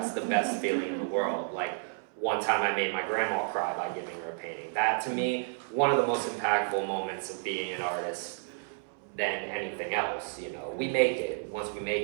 the best feeling in the world. Like one time I made my grandma cry by giving her a painting. That to me, one of the most impactful moments of being an artist than anything else, you know. We make it. Once we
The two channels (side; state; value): left; silent; 57 dB below the other